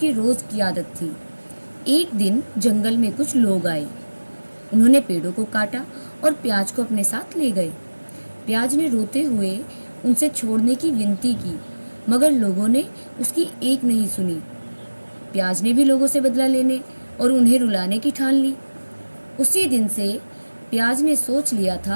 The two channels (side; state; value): both; inverted; correlation -1.00